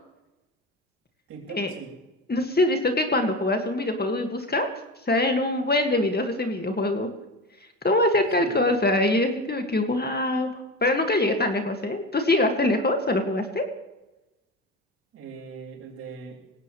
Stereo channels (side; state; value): both; normal; correlation 0.26